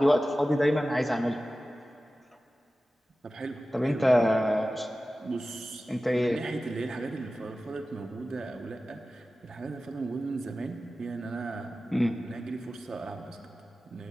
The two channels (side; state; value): both; normal; correlation 0.95